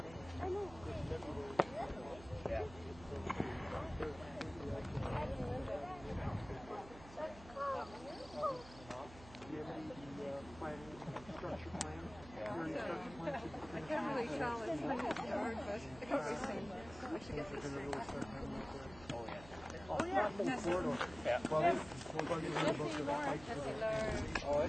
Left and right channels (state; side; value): noise; right; hum, 17 dB below the sound